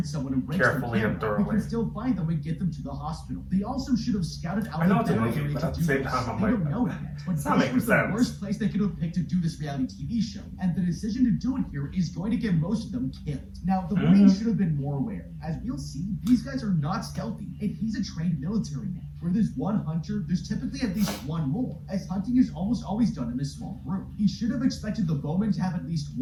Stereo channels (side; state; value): both; identical; correlation 1.00